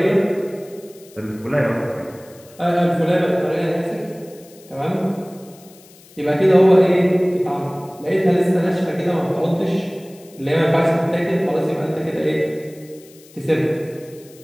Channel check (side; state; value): left; noise; hiss, 25 dB below the sound